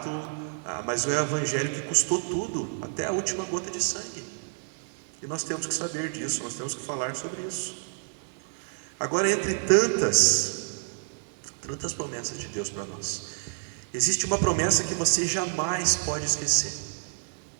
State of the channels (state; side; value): silent; left; digital silence